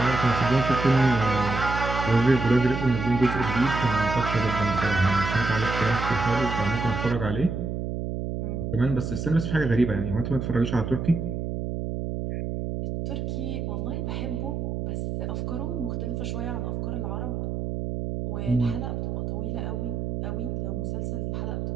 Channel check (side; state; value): right; noise; hum, 3 dB below the sound